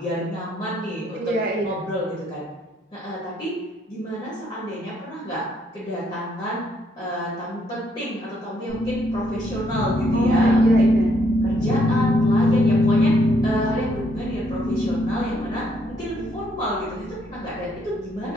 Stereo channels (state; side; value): normal; both; correlation 0.70